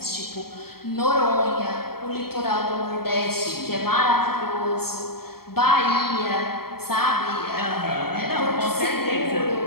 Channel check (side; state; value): right; late; 0.95 ms